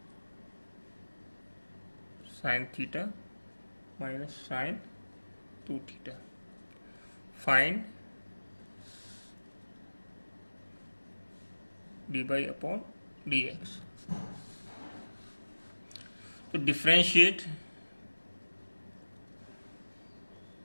sin theta minus sin 2 theta. Find dy upon dx. To differentiate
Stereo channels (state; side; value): inverted; both; correlation -1.00